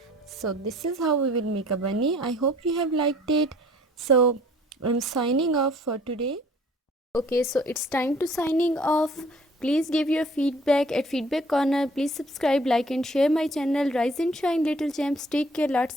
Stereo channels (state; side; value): normal; both; correlation 0.55